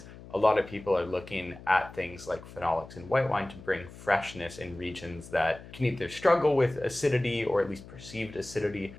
a lot of people are looking at things like phenolics in white wine to bring freshness in regions that can either struggle with acidity or at least perceived acidity,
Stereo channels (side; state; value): left; noise; hum, 17 dB below the sound